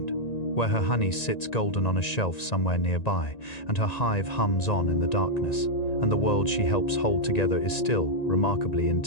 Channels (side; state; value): right; late; 1.9 ms